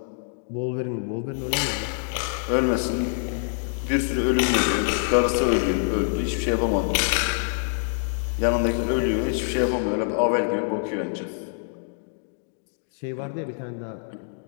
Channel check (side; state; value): right; silent; digital silence